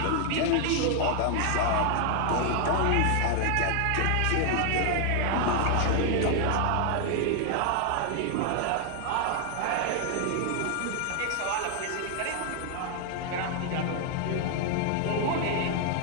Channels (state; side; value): different; both; correlation 0.00